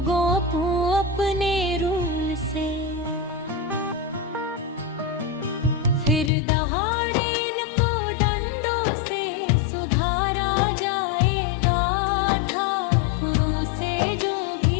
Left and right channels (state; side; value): drops out; right; at 6.3 s